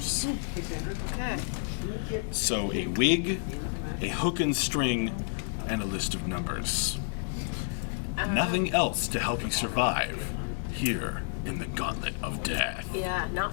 Okay. So a wig, a hook and string, and a list of numbers. Nothing else to help you survive here in the Gauntlet of Death. Yeah,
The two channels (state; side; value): silent; right; digital silence